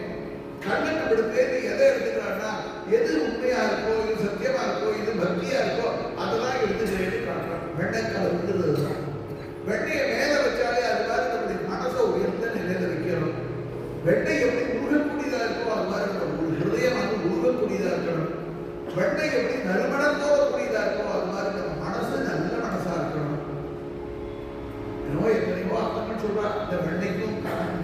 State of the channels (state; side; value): identical; both; correlation 1.00